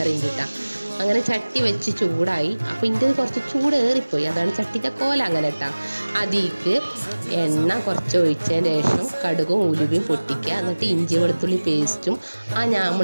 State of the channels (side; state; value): both; inverted; correlation -1.00